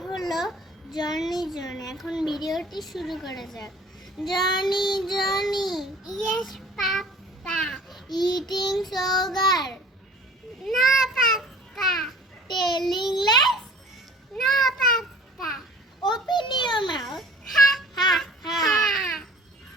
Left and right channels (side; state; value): both; normal; correlation 0.48